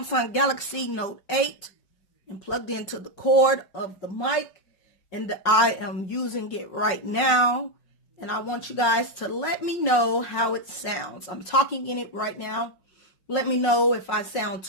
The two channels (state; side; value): late; right; 5.6 ms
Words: Galaxy Note 8 and plugged into the cord of the mic, and I am using it right now, and I want you guys to let me know how it sounds. I'm talking in it right now. Let me know if I sound